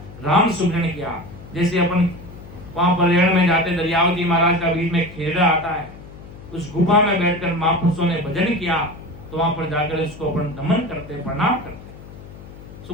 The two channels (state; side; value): noise; left; hum, 17 dB below the sound